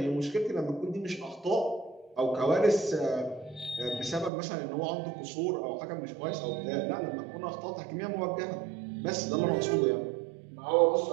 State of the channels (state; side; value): drops out; left; at 4.3 s